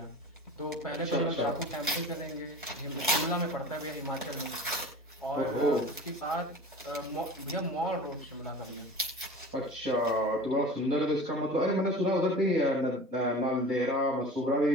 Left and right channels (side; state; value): both; normal; correlation 0.38